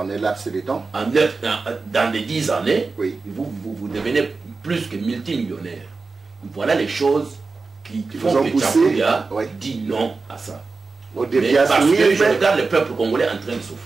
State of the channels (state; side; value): quieter; left; 4.1 dB